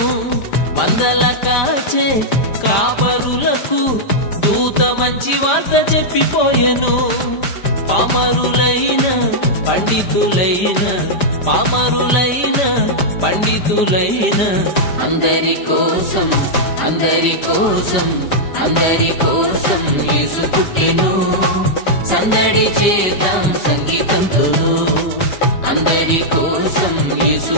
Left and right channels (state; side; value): late; right; 5.0 ms